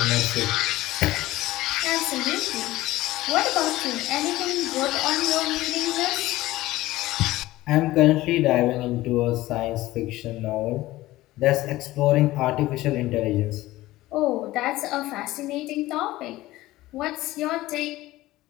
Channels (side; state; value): right; quieter; 17.2 dB